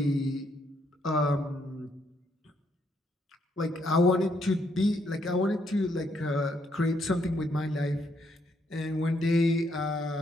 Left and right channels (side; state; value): both; normal; correlation 0.74